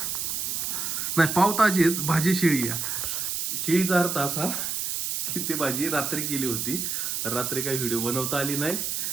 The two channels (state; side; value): noise; right; hiss, 2 dB below the sound